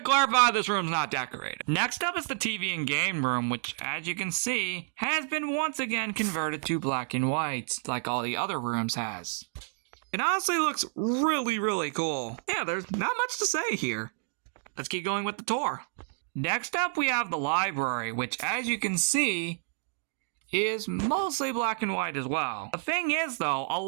clarify, this room's not decorated. Next up is the TV and game room, which, as you can see, has been once again converted to black and white, like all the other rooms has. It honestly looks really, really cool. Yeah, there's not much to say here. Let's keep going with the tour. Next up, we have the library, which, as you can see, is mostly black and white as well. The thing is, though, a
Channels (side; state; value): left; silent; 57 dB below the other